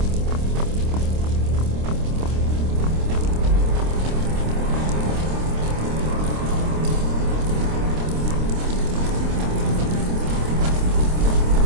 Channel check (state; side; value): late; left; 26 ms